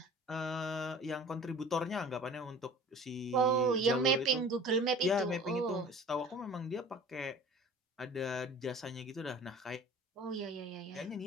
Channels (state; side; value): normal; both; correlation 0.43